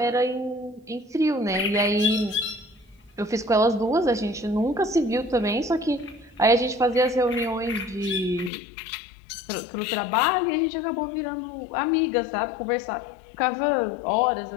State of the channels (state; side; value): drops out; right; at 8.5 s